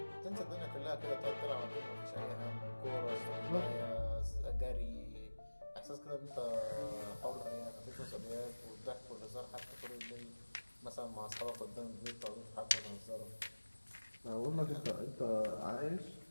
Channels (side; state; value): both; inverted; correlation -1.00